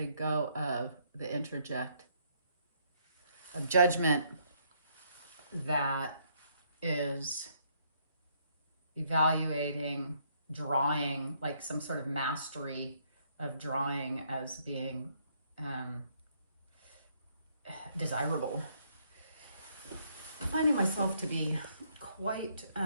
go of the interject of judgment that is evaluating drawing, like some sort of mastery of drawing as being desirable. I'm finding myself to be quite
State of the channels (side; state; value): both; inverted; correlation -0.70